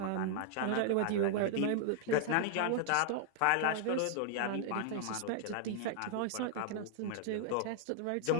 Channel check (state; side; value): different; both; correlation 0.00